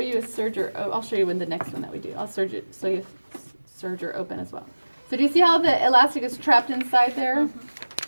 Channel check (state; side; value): inverted; both; correlation -1.00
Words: a serger. Oh, I'll show you in the next one that we do. I'll serger so you serger open as well. So do you see how the elastic is trapped inside there?